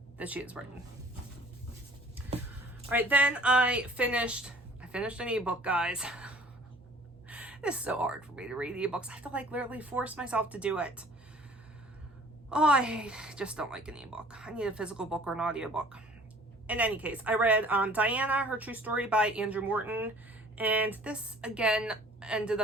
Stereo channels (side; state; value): both; normal; correlation 0.51